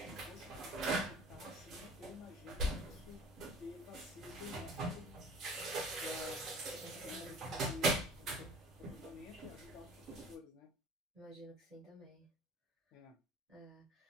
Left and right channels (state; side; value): normal; both; correlation 0.45